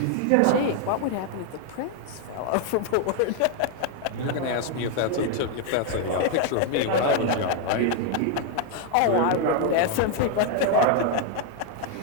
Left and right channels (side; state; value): both; different; correlation 0.00